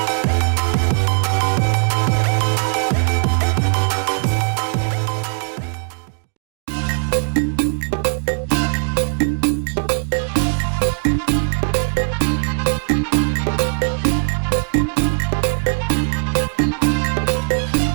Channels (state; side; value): silent; left; digital silence